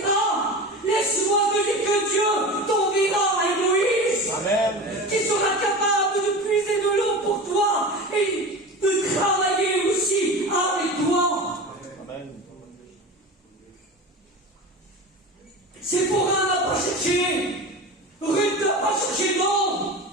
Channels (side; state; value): both; normal; correlation 0.30